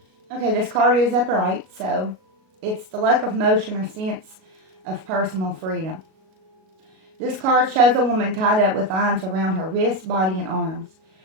Okay, this card is upright, so it's the lack of motion or sense of personal freedom. This card shows a woman tied up with lines around her wrists, body, and arms.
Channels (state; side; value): late; left; 37 ms